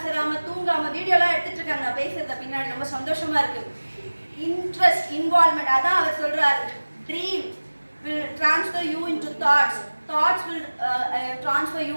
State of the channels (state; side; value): inverted; both; correlation -1.00